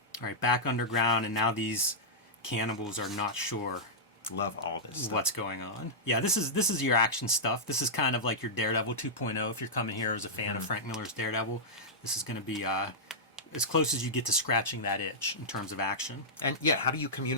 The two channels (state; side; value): normal; both; correlation -0.11